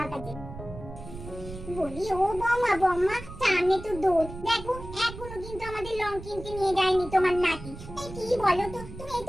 কাছে। বলি ও বম্মা, বম্মা সামনে তো দোল, দেখো এখনো কিন্তু আমাদের লং কিনতে নিয়ে যায়নি তোমার নাতি। এই কি বলো তো, তুমি এই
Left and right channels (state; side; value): noise; right; rumble, 12 dB below the sound